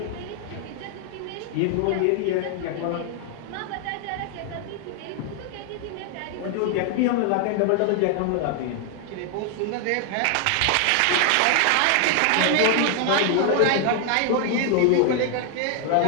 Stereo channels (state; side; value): different; both; correlation 0.00